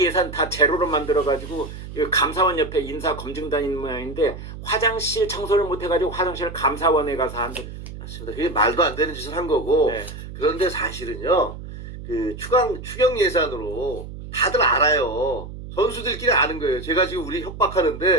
예산 다 제로로 만들어가지고 감사원 옆에 인사검증단이 있는 모양인데 화장실 청소를 못해가지고 화장실 감사원에 가서 한다. 맞습니다. 그게 말도 안 되는 짓을 한 거고. 네. 그런데 사실은요, 그 추경 예산으로 다들 알아요. 선수들끼리 아는 거예요. 제가 지금 우리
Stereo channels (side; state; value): right; noise; hum, 11 dB below the sound